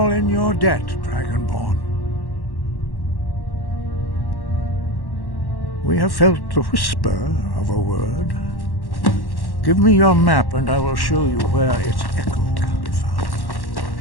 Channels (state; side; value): late; right; 1.1 ms